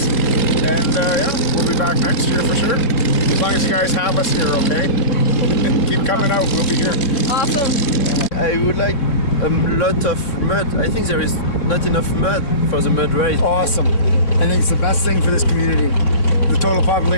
And yeah, we'll be back next year for sure. As long as you guys have us here, okay? Keep coming out, we'll be here. Awesome. I would like a lot of mud. I think there is not enough mud for the mud race. Awesome. I think it's the best thing for this community. The total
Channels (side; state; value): right; late; 3.6 ms